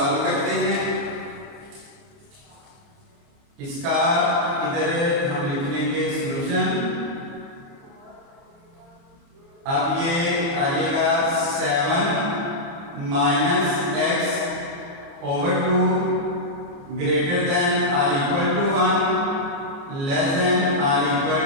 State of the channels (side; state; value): left; late; 29 ms